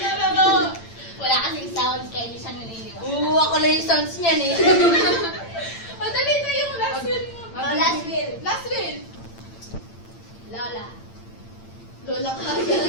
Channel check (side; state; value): right; late; 8.8 ms